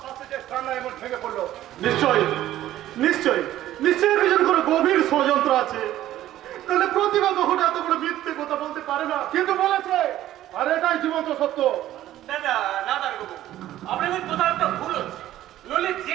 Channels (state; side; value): quieter; left; 13.6 dB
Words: শাস্তিতে কান্না এমন ভেঙে পড়লো? নিশ্চয়ই নিশ্চয়ই নিশ্চয়ই এর পিছনে কোনো গভীর ষড়যন্ত্র আছে। তাহলে প্রতিভা কখনো এত বড় মিথ্যে কথা বলতে পারে না। কিন্তু বলেছে, আর এটাই জীবন্ত সত্য। দাদা না দাঁড়াবো, আপনাদের কোথাও একটা ভুল হচ্ছে। নইলে